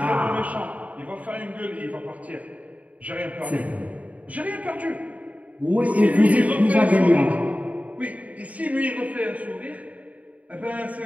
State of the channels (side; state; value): left; late; 0.070 ms